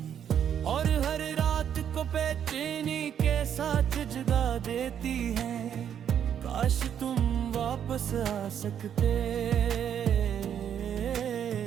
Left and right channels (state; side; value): quieter; left; 9.0 dB